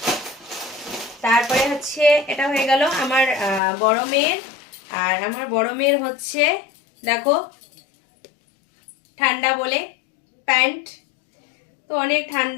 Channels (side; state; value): right; drops out; at 3.6 s